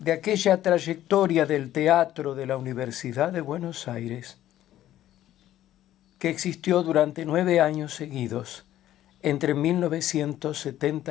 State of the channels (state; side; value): quieter; right; 13.0 dB